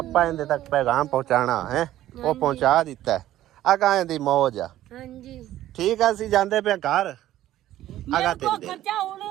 ਇਹਦੇ ਤੱਕ ਪੈਗਾਮ ਪਹੁੰਚਾਣਾ ਹੈ ਉਹ ਪਹੁੰਚਾ ਦਿੱਤਾ ਅਗਾ ਦੀ ਮੌਜ ਆ ਹਾਂਜੀ ਠੀਕ ਆ ਅਸੀਂ ਜਾਂਦੇ ਪਏ ਘਰ ਅਗਾ ਤੇ ਖਰਚਾ ਹੁਣ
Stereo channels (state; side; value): quieter; left; 13.6 dB